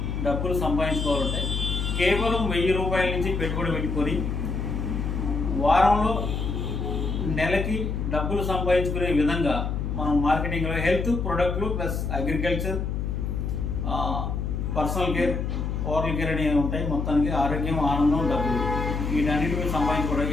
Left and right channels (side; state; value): left; noise; hum, 2 dB below the sound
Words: డబ్బులు సంపాదించుకోవాలంటే కేవలం 1000 రూపాయల నుంచి పెట్టుబడి పెట్టుకొని వారంలో నెలకి డబ్బులు సంపాదించుకునే విధంగా మనం మార్కెటింగ్లో హెల్త్ ప్రొడక్ట్లు plus agriculture, personal care, oral care అనేవి ఉంటాయి. మొత్తానికి ఆరోగ్యం, ఆనందం, డబ్బులు వీటన్నిటి మీద సంపాదించుకోవడం